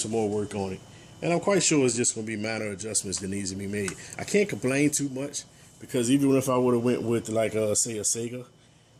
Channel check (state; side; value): identical; both; correlation 1.00